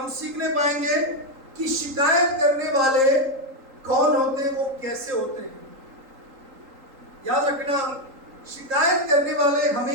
सीखने पाएंगे कि शिकायत करने वाले कौन होते हैं, वो कैसे होते हैं। याद रखना, शिकायत करने वाले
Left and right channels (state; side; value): late; left; 3.8 ms